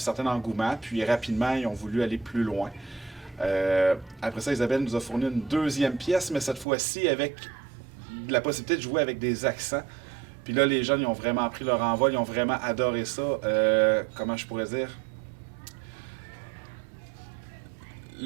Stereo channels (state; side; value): drops out; left; at 6.7 s